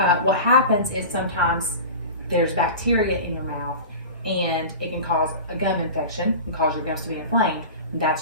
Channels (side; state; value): both; inverted; correlation -0.32